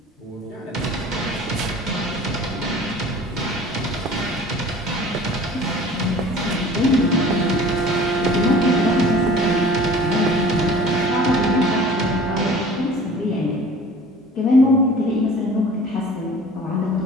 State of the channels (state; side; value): normal; both; correlation 0.45